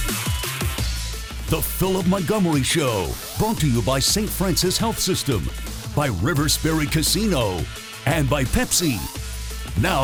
The Philip Montgomery Show, brought to you by St. Francis Health System, by River Spirit Casino, and by Pepsi.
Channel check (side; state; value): both; identical; correlation 1.00